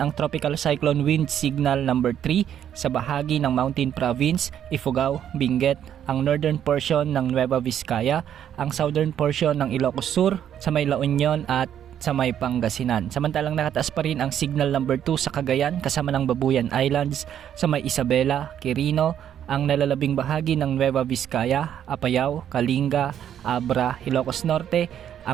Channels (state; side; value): quieter; left; 9.9 dB